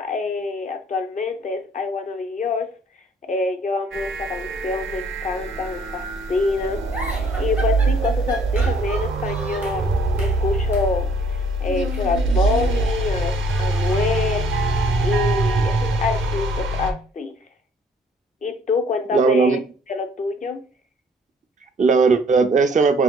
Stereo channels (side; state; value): both; normal; correlation 0.60